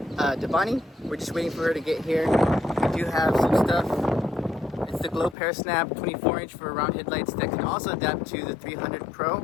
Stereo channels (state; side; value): drops out; right; at 5.4 s